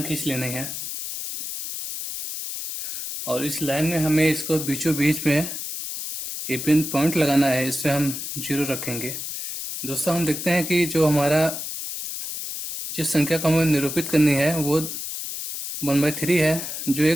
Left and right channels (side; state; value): left; noise; hiss, 6 dB below the sound